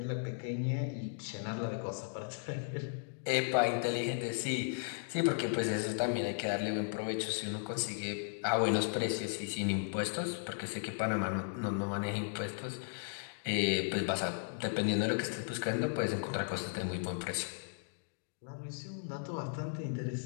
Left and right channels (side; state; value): right; silent; digital silence